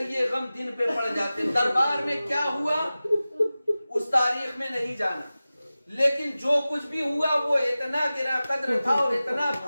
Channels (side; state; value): both; inverted; correlation -0.96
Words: یہ غم دن پہ پڑ جاتے، دربار میں کیا ہوا اس تاریخ میں نہیں جانا، لیکن جو کچھ بھی ہوا وہ اتنا گرا قدر تھا اور اتنا